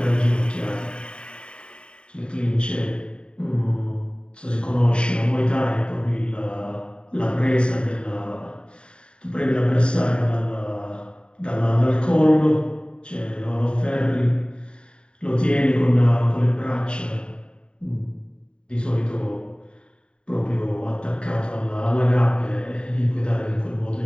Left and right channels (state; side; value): late; right; 0.052 ms